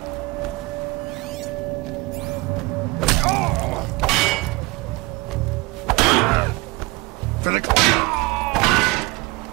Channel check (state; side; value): quieter; left; 24.5 dB